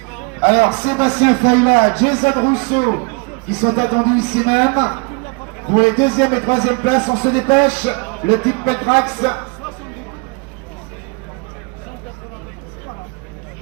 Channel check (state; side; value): quieter; left; 31.9 dB